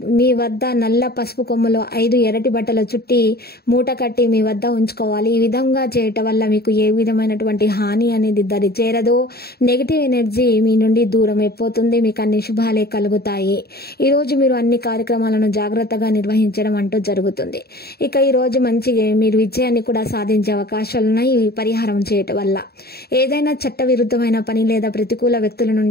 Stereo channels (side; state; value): right; late; 0.46 ms